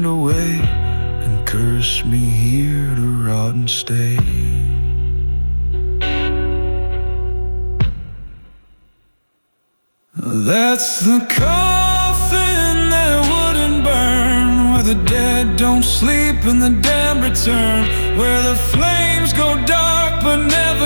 away and cursed me here to rot and stay. That's the coffin that wouldn't burn, where the dead don't sleep and the damned return, where the flames go dark but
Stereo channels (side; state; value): both; inverted; correlation -1.00